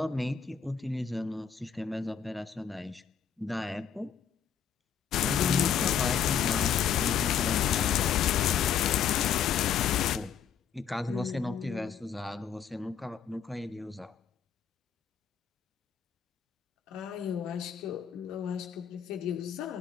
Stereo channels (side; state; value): right; quieter; 7.9 dB